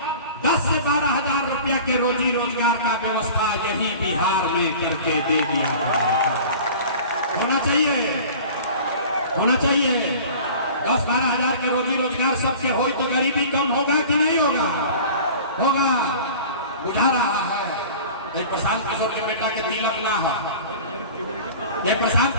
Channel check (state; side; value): inverted; both; correlation -0.41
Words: 10 से 12 हजार रुपया के रोजी रोजगार का व्यवस्था यही बिहार में करके दे दिया गया है। होना चाहिए, होना चाहिए। 10-12 हजार के रोजी रोजगार सबके हो तो गरीबी कम होगा कि नहीं होगा। होगा। बुझा रहा है। ये प्रशांत किशोर के बेटा के तिलक ना हो, ये प्रशांत